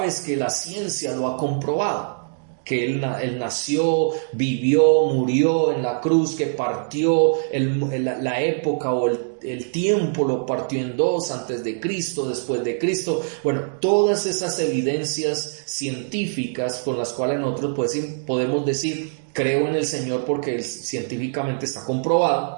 que la ciencia lo ha comprobado, que él nació, vivió, murió en la cruz, que partió la época o el tiempo lo partió en dos, antes de Cristo, después de Cristo. Bueno, todas esas evidencias científicas con las cuales nosotros podemos decir, creo en el Señor porque científicamente está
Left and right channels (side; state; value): left; silent; digital silence